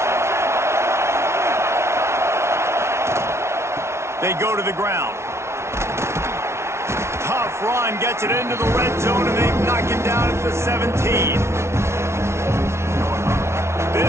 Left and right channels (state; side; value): late; left; 0.13 ms